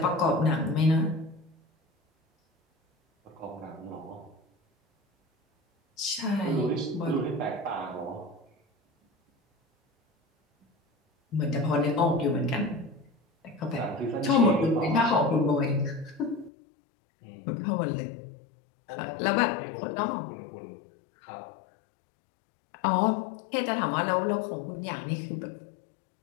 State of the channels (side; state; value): right; drops out; at 16.5 s